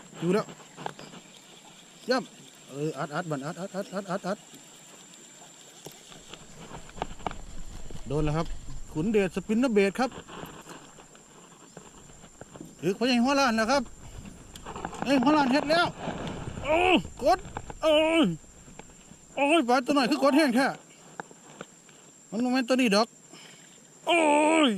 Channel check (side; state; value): both; identical; correlation 1.00